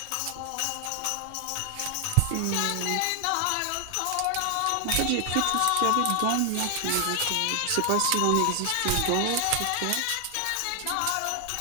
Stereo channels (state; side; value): different; both; correlation 0.00